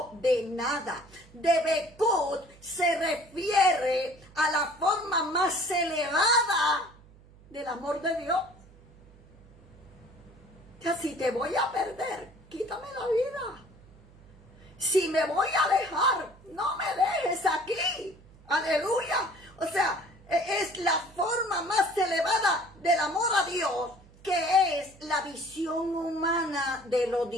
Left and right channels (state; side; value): noise; right; hum, 24 dB below the sound